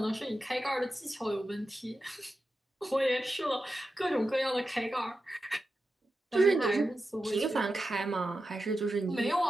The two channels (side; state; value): both; normal; correlation 0.91